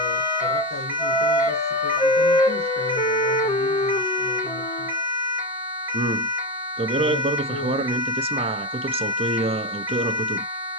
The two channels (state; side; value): normal; both; correlation 0.15